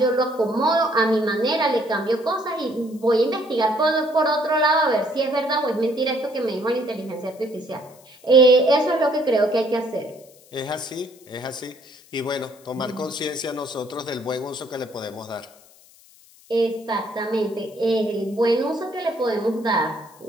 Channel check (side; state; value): left; noise; hiss, 26 dB below the sound